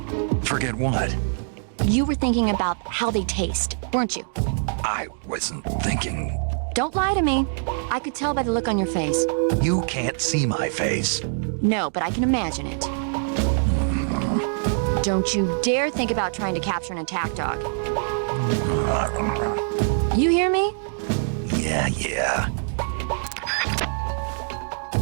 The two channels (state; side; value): silent; left; digital silence